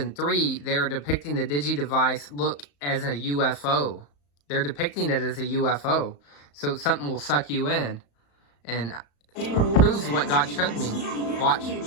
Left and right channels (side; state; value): right; late; 35 ms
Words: 3, they're depicting the Digidevice look as a UFO. They're depicting it as a UFO. So something will suck you in. And it proves what God showed me. Watch. Hey,